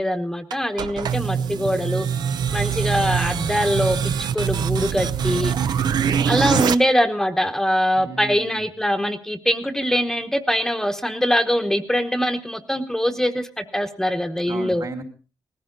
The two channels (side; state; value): both; normal; correlation 0.84